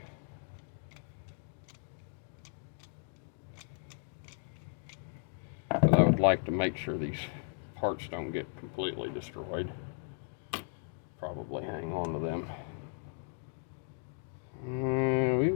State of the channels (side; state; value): right; silent; 54 dB below the other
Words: Like to make sure these parts don't get completely destroyed. Probably hang on to them.